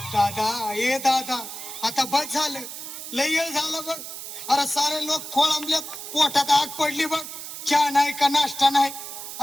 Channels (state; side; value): noise; right; hiss, 9 dB below the sound